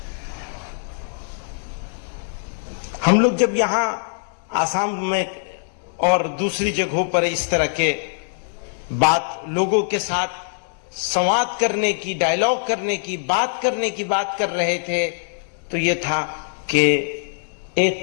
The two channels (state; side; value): silent; right; 61 dB below the other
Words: ہم لوگ جب یہاں آسام میں اور دوسری جگہوں پر اس طرح کے بات لوگوں کے ساتھ سواد کرنے کی، ڈائلاگ کرنے کی، بات کرنے کی بات کر رہے تھے، تو یہ تھا کہ